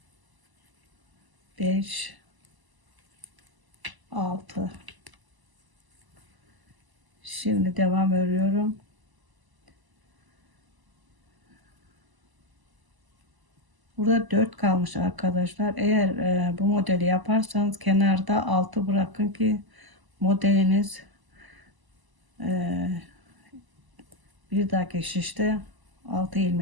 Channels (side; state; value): left; late; 1.0 ms